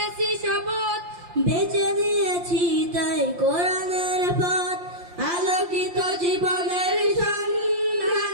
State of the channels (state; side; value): late; left; 5.7 ms